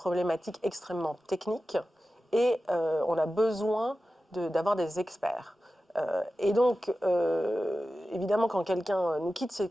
extrêmement techniques et on a besoin d'avoir des experts. Et donc, évidemment, quand quelqu'un nous quitte, c'est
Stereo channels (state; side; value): normal; both; correlation 0.94